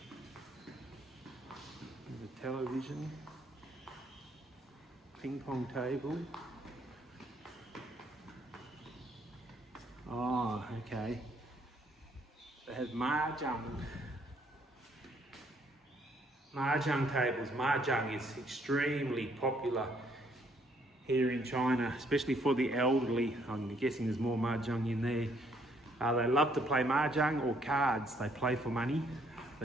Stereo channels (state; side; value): normal; both; correlation 0.68